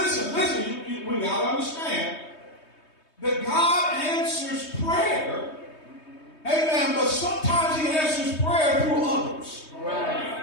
we got to understand that God answers prayer. Amen. But sometimes he answers prayer through others.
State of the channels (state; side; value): late; right; 3.2 ms